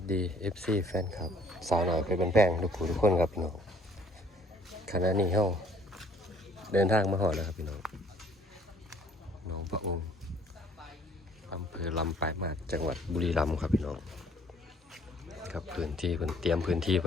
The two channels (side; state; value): both; normal; correlation 0.59